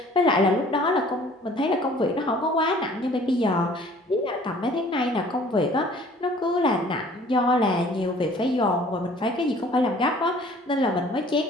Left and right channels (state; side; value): normal; both; correlation 0.53